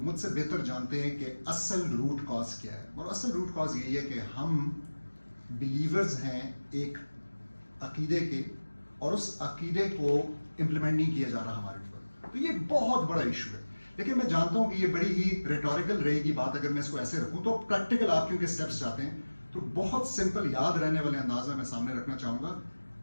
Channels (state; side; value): inverted; both; correlation -1.00